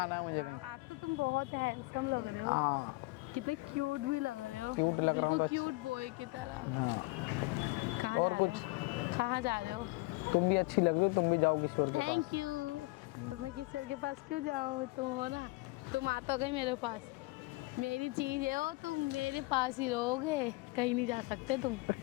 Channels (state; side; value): quieter; right; 23.9 dB